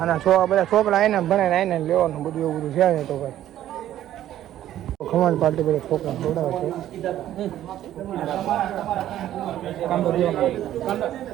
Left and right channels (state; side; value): quieter; left; 12.4 dB